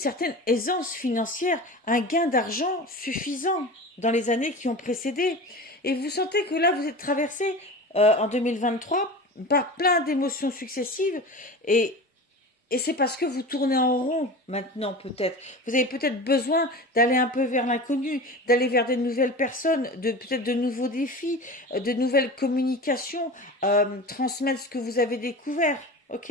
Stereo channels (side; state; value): both; normal; correlation 0.32